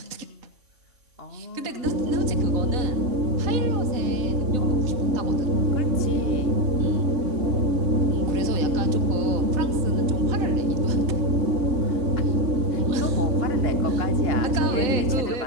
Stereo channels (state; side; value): late; left; 3.9 ms